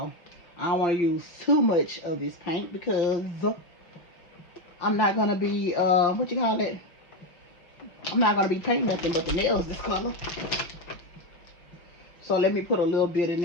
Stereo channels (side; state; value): right; late; 5.8 ms